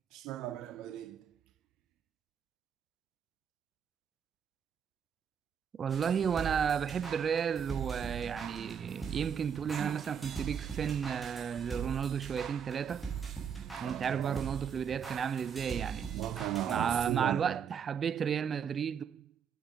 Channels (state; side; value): quieter; left; 7.5 dB